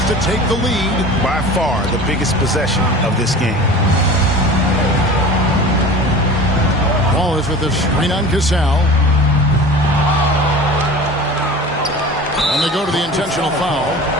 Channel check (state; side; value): normal; both; correlation 0.38